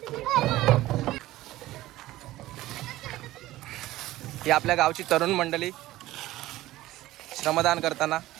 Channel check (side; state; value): left; quieter; 16.3 dB